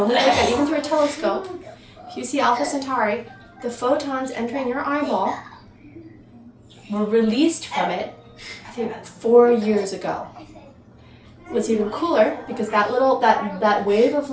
even through a telescope, if you see Alpha Centauri, the photons entering your eyeball were released from it, I think, 4 years ago. What's even cooler, because that wave of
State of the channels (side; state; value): both; identical; correlation 1.00